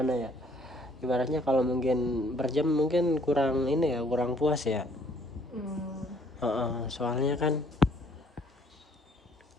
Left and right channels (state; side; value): normal; both; correlation 0.62